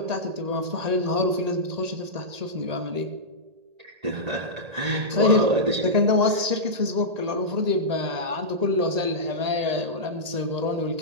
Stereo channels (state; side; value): late; left; 1.8 ms